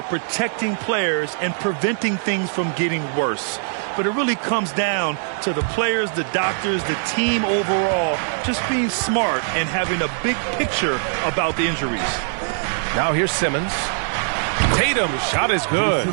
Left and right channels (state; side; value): silent; left; 64 dB below the other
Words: protecting players and preventing things from getting worse. But it really comes down to the players, the doctors, the team overall, just being smart and having a big picture about the injuries. Now here's Simmons. Tatum, shot is good.